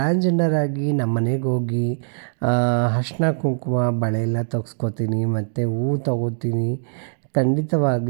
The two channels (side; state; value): left; silent; digital silence